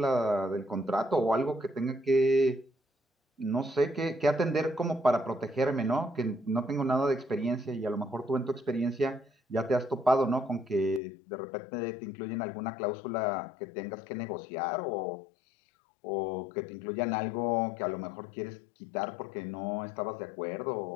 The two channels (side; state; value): right; drops out; at 11.0 s